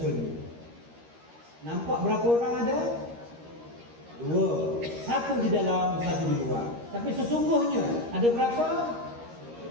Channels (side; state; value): left; late; 13 ms